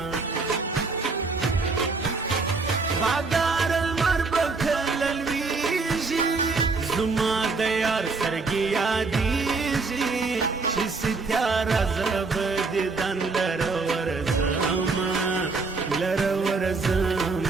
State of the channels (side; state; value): left; quieter; 4.1 dB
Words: بادار لمر به کله لویږي زما د یار سترګې یادېږي چې ستیاره زه به دیدن لره ورځمه لره